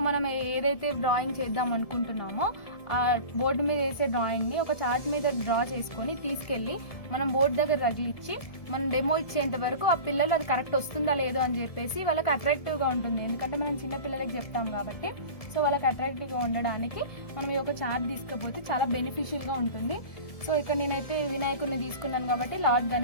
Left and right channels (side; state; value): right; late; 1.7 ms